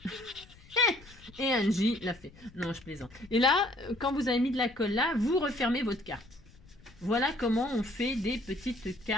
Et Angie l'a fait. Non, je plaisante. Et là, quand vous avez mis de la colle là, vous refermez votre carte. Voilà comment on fait des petites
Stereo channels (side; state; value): left; noise; rumble, 24 dB below the sound